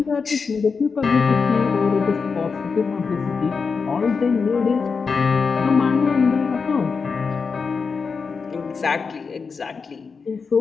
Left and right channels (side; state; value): right; quieter; 5.1 dB